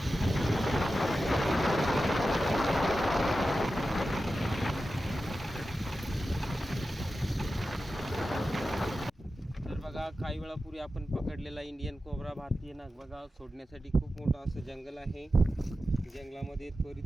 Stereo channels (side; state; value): both; normal; correlation 0.92